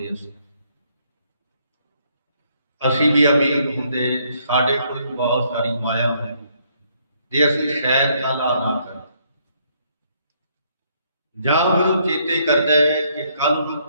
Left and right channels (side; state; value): both; inverted; correlation -0.70